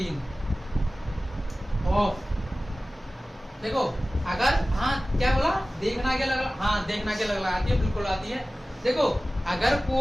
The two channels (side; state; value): both; normal; correlation 0.97